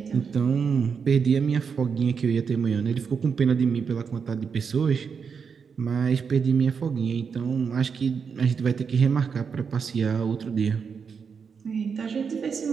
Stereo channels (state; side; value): quieter; left; 6.1 dB